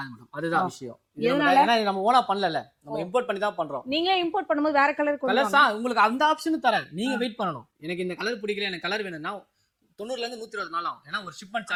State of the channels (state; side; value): identical; both; correlation 1.00